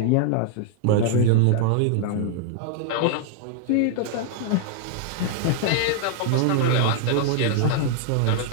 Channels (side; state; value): both; different; correlation 0.00